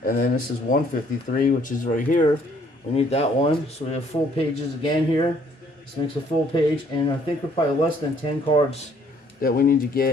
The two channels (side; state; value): both; normal; correlation 0.63